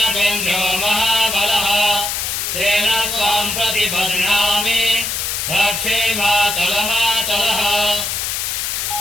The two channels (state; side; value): noise; left; hiss, 2 dB below the sound